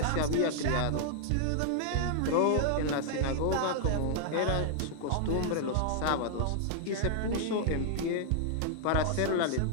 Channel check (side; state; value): both; different; correlation -0.01